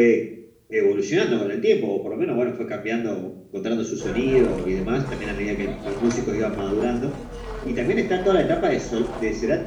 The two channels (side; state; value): both; identical; correlation 1.00